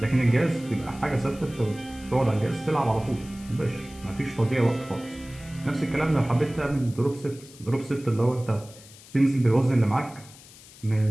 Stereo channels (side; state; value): left; noise; hiss, 21 dB below the sound